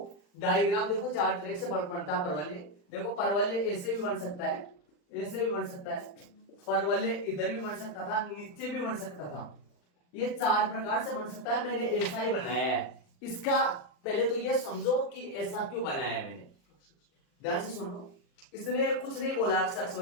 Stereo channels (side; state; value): right; late; 40 ms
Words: डायग्राम देखो 4 तरीके से बनता है परवलय। देखो परवलय ऐसे भी बन सकता है, ऐसे भी बन सकता है, परवलय इधर भी बन सकता था, नीचे भी बन सकता था, ये 4 प्रकार से बन सकता है। मैंने ऐसा ही बनाया है। इसका पहले तो ये समझो कि ऐसा क्यों बनाया है मैंने, ध्यान से सुनो। इसने कुछ नहीं बोला अक्ष